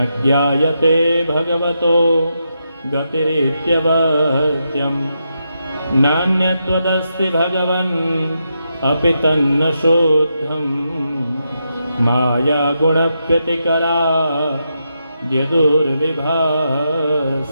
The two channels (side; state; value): both; inverted; correlation -0.84